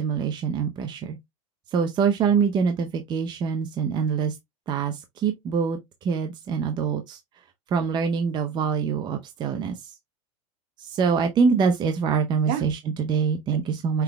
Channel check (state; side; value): quieter; left; 5.8 dB